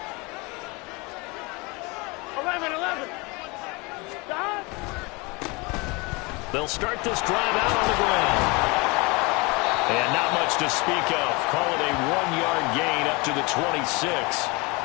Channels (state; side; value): quieter; right; 26.9 dB